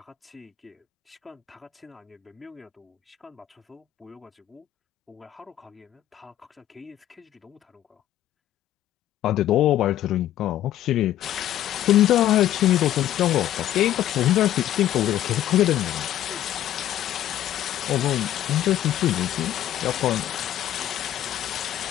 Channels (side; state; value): right; quieter; 12.6 dB